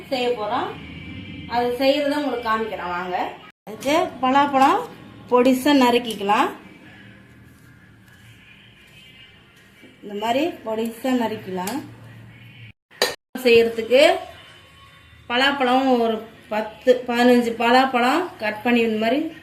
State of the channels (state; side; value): identical; both; correlation 1.00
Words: அது செய்கிறத உங்களுக்கு காமிக்கிறேன் வாங்க. அதுக்கு பலாப்பழம் பொடிசாக நறுக்கிக்கலாம். இந்த மாதிரி பொடிசாக நறுக்கலாம். செய்கிறதுக்கு பலாப்பழம் ஒரு 10-15 பலாப்பழம் கட் பண்ணி இந்த மாதிரி